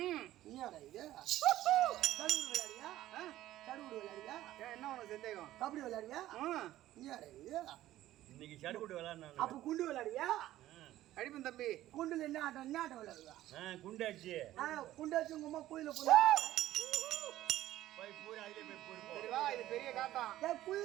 நீ இது சடுகுடு விளையாடுவியா சடுகுடு விளையாடுவியா என்ன உனக்கு சந்தேகம் கபடி விளையாடுவியா ம் நீ இது இன்னைக்கு சடுகுடு விளையாடணும் அப்ப குண்டு விளையாடுவியா அடிப்பன் தம்பி குண்டுல என்ன ஆட்டம் விளையாடுவா குண்டு அடிச்சு குண்டு வச்சு உங்க அம்மா கோயில போனா போய் பூரா அதிலே போய் பூரு போ சரி வா இது பெரிய காட்டம்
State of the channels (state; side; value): quieter; left; 14.4 dB